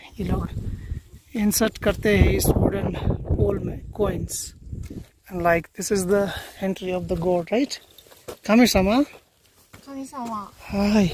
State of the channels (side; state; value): both; identical; correlation 1.00